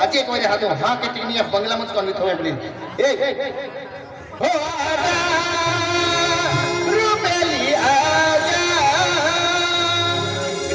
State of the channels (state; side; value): identical; both; correlation 1.00